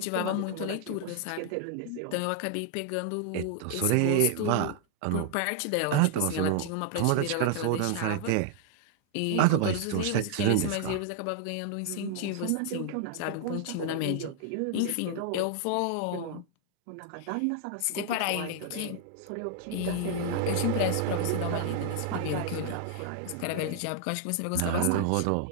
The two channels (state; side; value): different; both; correlation 0.00